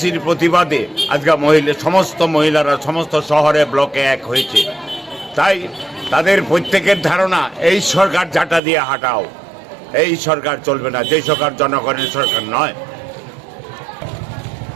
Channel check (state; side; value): drops out; left; at 8.6 s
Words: প্রতিবাদে আজকে সমস্ত মহিলারা সমস্ত শহরে ব্লকে এক হয়েছে। তাই তাদের প্রত্যেকের ধারণা এই সরকার ঝাঁটা দিয়ে হাঁটাও, এই সরকার চলবে না, যে সরকার জনগণের সরকার নয়।